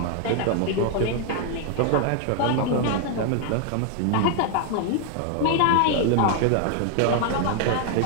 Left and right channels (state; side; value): different; both; correlation 0.00